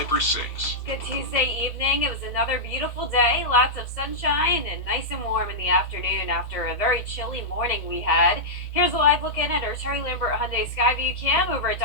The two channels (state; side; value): late; right; 1.8 ms